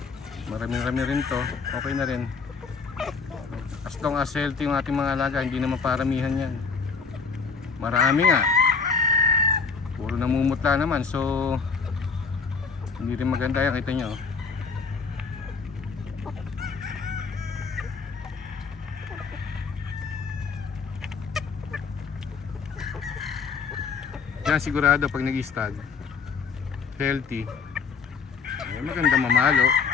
marami-rami rin to, okay na rin. As long as healthy yung ating mga alaga, hindi naman paramihan yan. Marami nga, puro namumutla naman, so hindi rin maganda yan, kita nyo. Yan sigurado pag nag-stag healthy, maganda mamalo,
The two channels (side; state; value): right; quieter; 5.2 dB